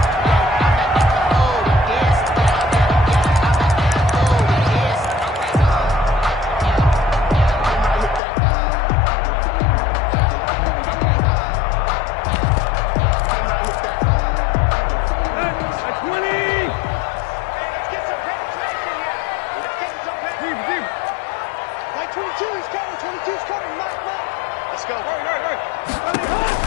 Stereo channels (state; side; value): drops out; right; at 8.2 s